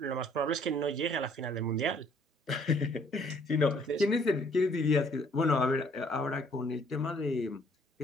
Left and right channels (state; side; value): normal; both; correlation 0.62